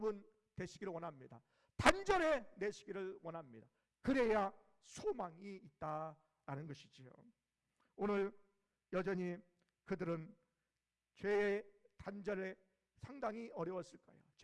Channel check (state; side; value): identical; both; correlation 1.00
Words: 되시기를 원합니다. 단절해 내시기를 원합니다. 그래야 소망이 있다라는 것이지요. 오늘 여전히 그들은 죄의 단절에 상당히 어려웠을 거예요.